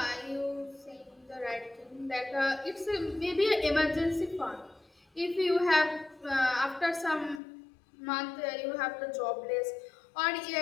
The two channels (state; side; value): drops out; right; at 7.4 s